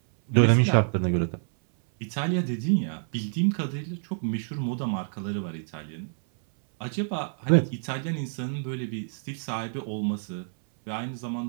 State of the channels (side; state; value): left; silent; 58 dB below the other